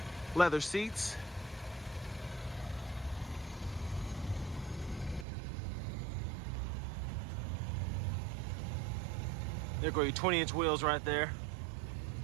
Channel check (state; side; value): drops out; left; at 5.2 s